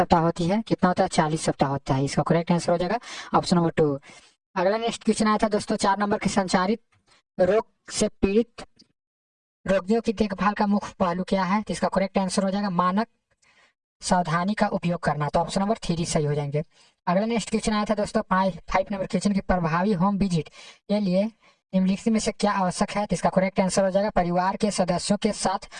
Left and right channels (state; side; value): identical; both; correlation 1.00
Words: होती है। कितना होता है? 40 सप्ताह होता है। इसका करेक्ट आंसर हो जाएगा ऑप्शन नंबर 2। अगला नेक्स्ट क्वेश्चन आया था दोस्तों 4 नंबर के संचारित रोग से पीड़ित रोगियों की देखभाल का मुख्य पहलू क्या है? तो इसका करेक्ट आंसर हो जाएगा मानक सावधानी का उपयोग करना। तो ऑप्शन नंबर 3 सही हो जाएंगे। अगला नेक्स्ट क्वेश्चन आया था दोस्तों 5 नंबर क्वेश्चन की प्रभावी होम विजिट के लिए निम्नलिखित में से क्या आवश्यक है? तो इसका करेक्ट आंसर हो जाएगा परिवार के सदस्यों के साथ